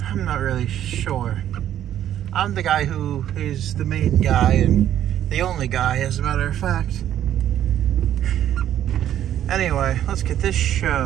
I'm not really sure. I'm the guy who is the main guy, and the only guy, as a matter of fact. Anyway, let's get this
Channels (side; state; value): left; quieter; 11.2 dB